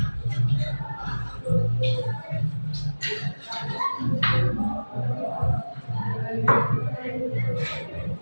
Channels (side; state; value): both; inverted; correlation -1.00